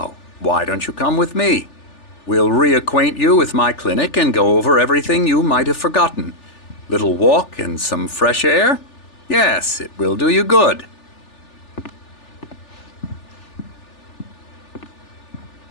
why don't you come with me? We'll reacquaint you with my clinic and go over everything you might have forgotten. Little walk and some fresh air? Yes, it will do you good.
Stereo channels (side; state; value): right; late; 3.4 ms